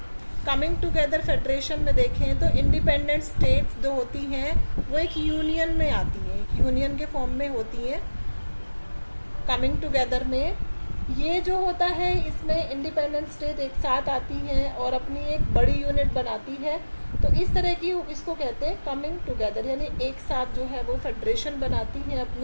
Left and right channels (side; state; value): both; inverted; correlation -1.00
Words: कमिंग टुगेदर फेडरेशन में देखें तो इंडिपेंडेंट स्टेट्स जो होती हैं वो एक यूनियन में आती हैं, एक यूनियन के फॉर्म में होती हैं। कमिंग टुगेदर में ये जो होता है, इसमें इंडिपेंडेंट स्टेट एक साथ आती हैं और अपनी एक बड़ी यूनिट बनाती है, तो इस तरह की इसको कहते हैं कमिंग टुगेदर, यानी एक साथ जो है वो फेडरेशन बनाती हैं